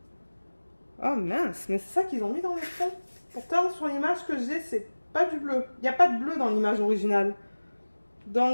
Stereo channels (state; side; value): inverted; both; correlation -1.00